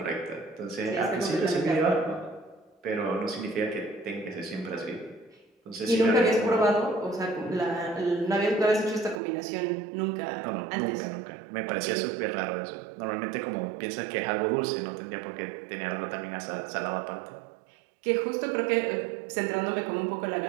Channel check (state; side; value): drops out; left; at 9.2 s